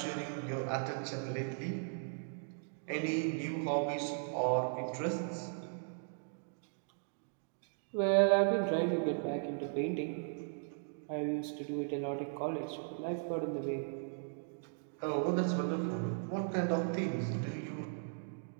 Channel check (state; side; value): silent; left; digital silence